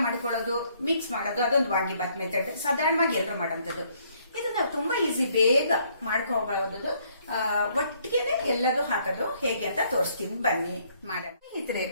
ಮಾಡ್ಕೊಳ್ಳೋದು, ಮಿಕ್ಸ್ ಮಾಡೋದು, ಅದೊಂದು ವಾಂಗಿ ಬಾತ್ ಮೆಥಡ್ ಸಾಧಾರಣವಾಗಿ ಎಲ್ಲರೂ ಮಾಡೋಂಥದ್ದು. ಇದನ್ನ ತುಂಬಾ ಈಸಿ, ಬೇಗ ಮಾಡ್ಕೋಬಹುದು. ಒಟ್ಟಿಗೆನೆ ಎಲ್ಲದೂ ಹಾಕೋದು ಹೇಗೆ ಅಂತ ತೋರಿಸ್ತೀನಿ, ಬನ್ನಿ ಮಾಡೋಣ.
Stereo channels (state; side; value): inverted; both; correlation -0.67